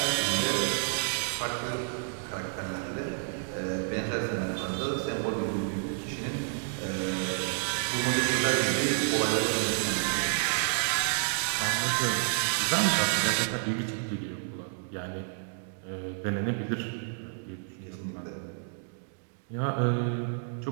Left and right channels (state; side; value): silent; left; 58 dB below the other